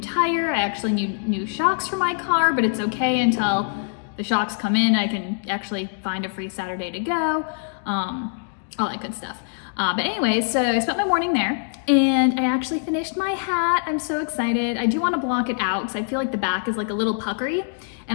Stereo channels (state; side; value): silent; right; digital silence